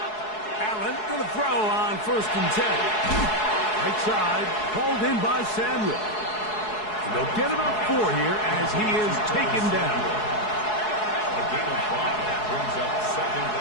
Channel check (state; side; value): late; right; 4.7 ms